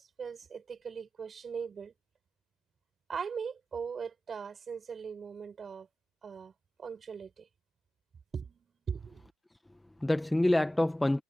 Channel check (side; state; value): both; normal; correlation 0.95